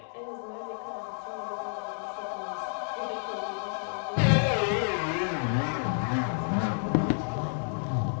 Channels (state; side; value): silent; right; 56 dB below the other